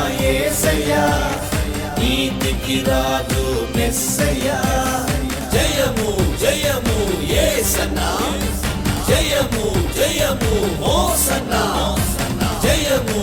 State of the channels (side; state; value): both; identical; correlation 1.00